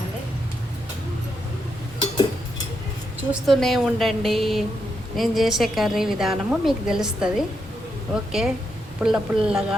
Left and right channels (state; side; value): normal; both; correlation 0.82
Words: చూస్తూనే ఉండండి, నేను చేసే కర్రీ విధానము మీకు తెలుస్తుంది. ఓకే, పుల్ల